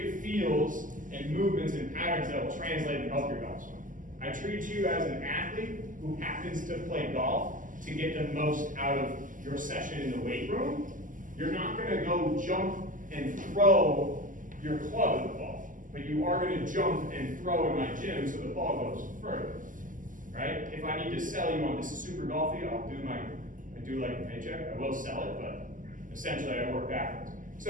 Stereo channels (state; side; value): late; left; 0.38 ms